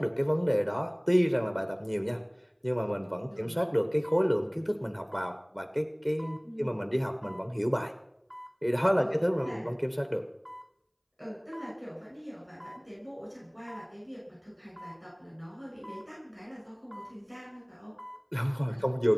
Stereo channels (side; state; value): both; identical; correlation 1.00